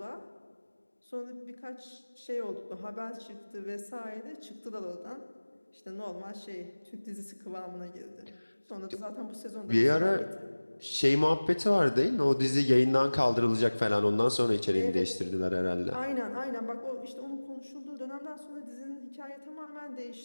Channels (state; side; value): inverted; both; correlation -1.00